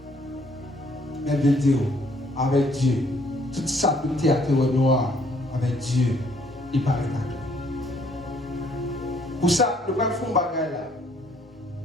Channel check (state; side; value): normal; both; correlation 0.64